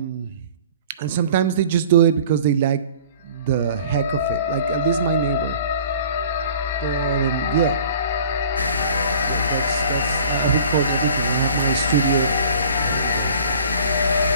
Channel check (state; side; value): inverted; both; correlation -0.47